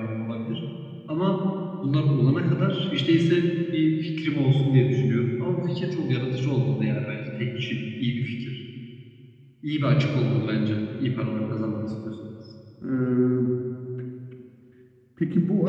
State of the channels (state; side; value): identical; both; correlation 1.00